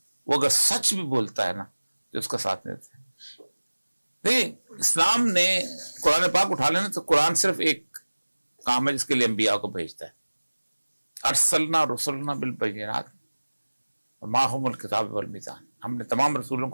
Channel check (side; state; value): both; inverted; correlation -1.00